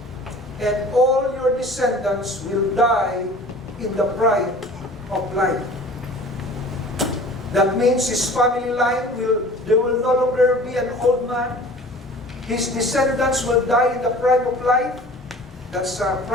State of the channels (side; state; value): both; normal; correlation 0.44